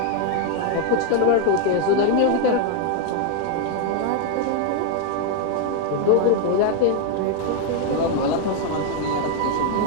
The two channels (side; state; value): both; different; correlation 0.00